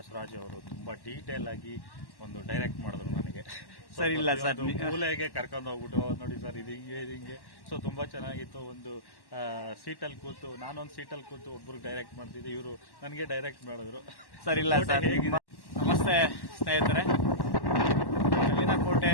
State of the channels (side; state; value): right; late; 1.1 ms